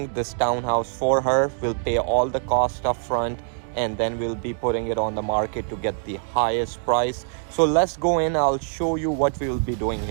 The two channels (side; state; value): left; silent; digital silence